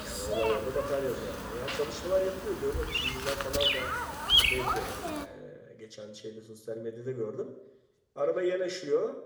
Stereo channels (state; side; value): identical; both; correlation 1.00